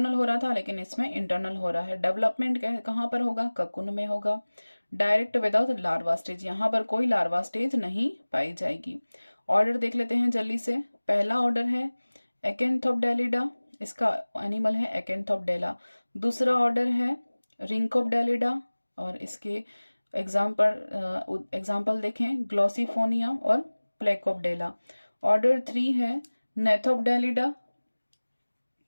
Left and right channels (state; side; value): inverted; both; correlation -1.00